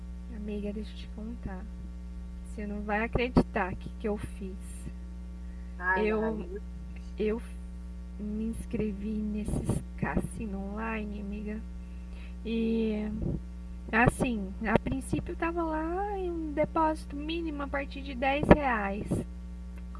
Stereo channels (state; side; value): identical; both; correlation 1.00